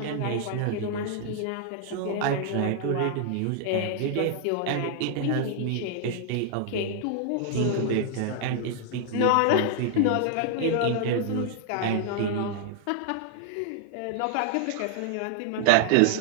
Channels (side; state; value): both; different; correlation -0.01